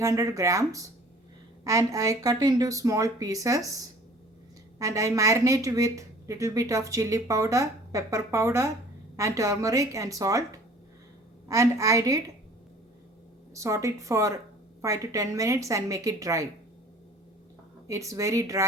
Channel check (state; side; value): normal; both; correlation 0.49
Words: grams and I cut into small pieces and I marinate with little bit of chili powder, pepper powder and turmeric and salt, and I did saute it for 5 to 10 minutes and make it dry. It's very